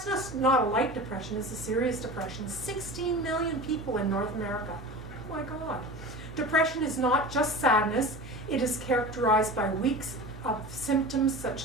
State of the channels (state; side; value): normal; both; correlation 0.33